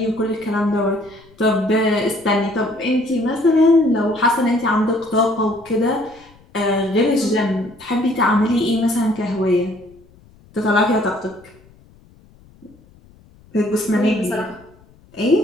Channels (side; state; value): left; noise; rumble, 27 dB below the sound